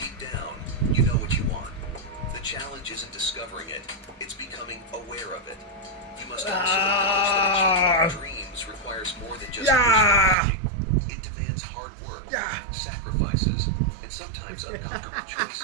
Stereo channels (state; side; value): drops out; left; at 10.4 s